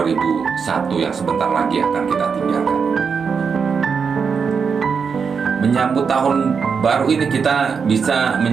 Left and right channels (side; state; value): left; quieter; 5.9 dB